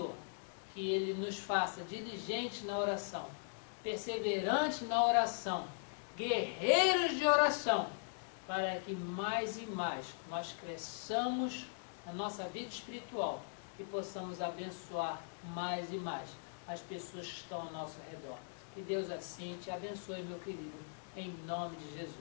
que Ele nos faça diligentes na oração, perseverantes na oração, guerreiros de oração, para que mais e mais nós cresçamos na nossa vida espiritual e possamos abençoar mais e mais as pessoas que estão ao nosso redor. Que Deus assim te abençoe, meu querido, em nome de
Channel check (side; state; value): right; silent; digital silence